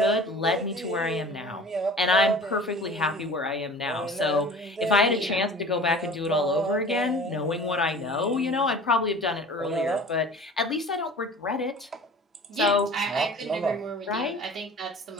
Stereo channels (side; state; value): both; normal; correlation 0.42